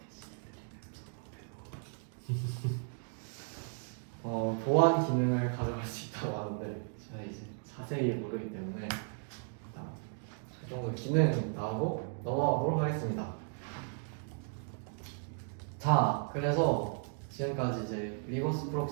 보안 기능을 가져갈 수 있다고 하는데 제가 이제 자세히 모르기 때문에 일단 그 정도 기능 나오고 넘어가도록 하겠습니다. 자, 그래서 지금까지 이제 리버스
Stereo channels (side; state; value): left; silent; 54 dB below the other